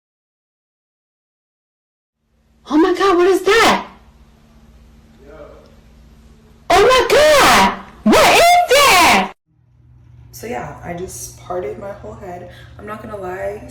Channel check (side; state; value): both; identical; correlation 1.00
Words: Oh my god, what is that? Yo. Oh my god! What is that? So yeah, I just parted my whole head. I'm not gonna lie,